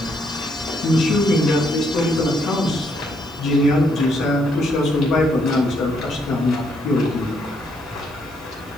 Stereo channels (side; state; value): right; noise; hiss, 26 dB below the sound